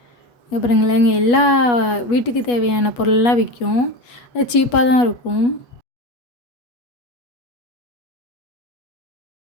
அப்புறங்களேங்க எல்லா வீட்டுக்கு தேவையான பொருளெலாம் விற்கும். அது சீப்பாக தான் இருக்கும்.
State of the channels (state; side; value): late; right; 8.3 ms